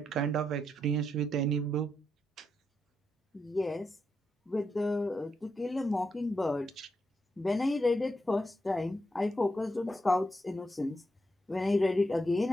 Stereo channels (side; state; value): both; normal; correlation 0.83